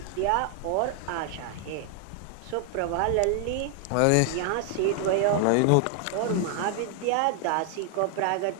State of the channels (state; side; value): different; both; correlation 0.00